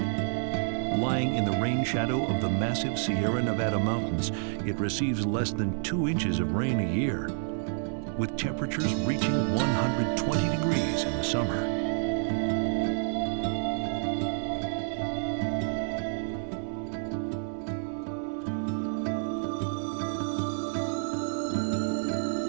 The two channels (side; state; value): left; silent; 58 dB below the other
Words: Lying in the rain shadow of the massive Sierra Nevada mountains, it receives less than 2 inches of rain a year, with temperatures reaching 120 degrees in the summer.